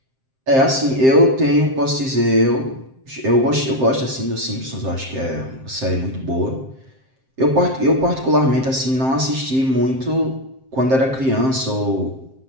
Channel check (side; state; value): left; late; 7.6 ms